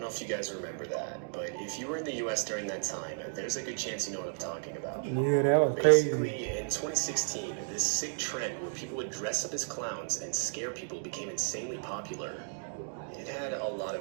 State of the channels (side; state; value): left; silent; digital silence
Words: know if you guys remember that, but if you were in the US during that time, there's a good chance you know what I'm talking about. Yeah, that was Basically, crazy. in 2016, this sick trend where people would dress up as clowns and scare people became insanely popular. It had a lot